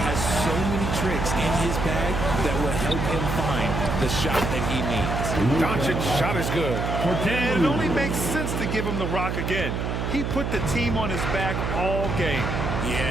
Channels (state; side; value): noise; right; hum, 2 dB below the sound